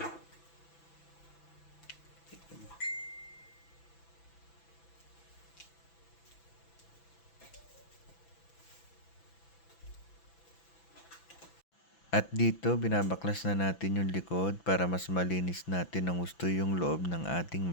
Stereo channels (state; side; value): late; right; 6.0 ms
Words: At dito, binabaklas na natin yung likod para mas malinis natin ang gusto yung loob ng ating